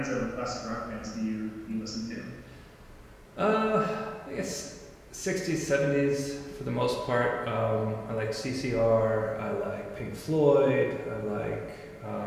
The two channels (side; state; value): both; identical; correlation 1.00